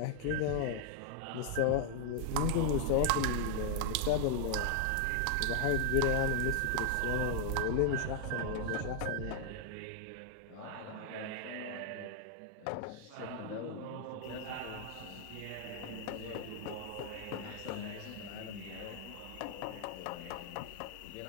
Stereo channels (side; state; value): both; different; correlation 0.00